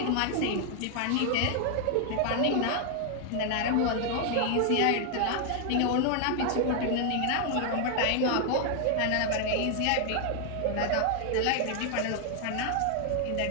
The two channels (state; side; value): different; both; correlation 0.00